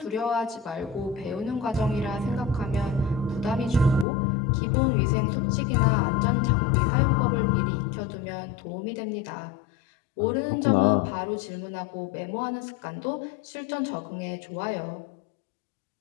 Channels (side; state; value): right; drops out; at 4.0 s